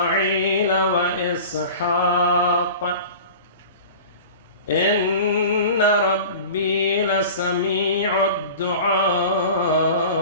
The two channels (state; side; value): inverted; both; correlation -0.38